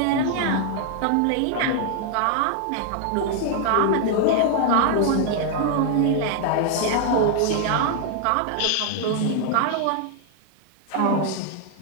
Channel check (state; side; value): different; both; correlation 0.00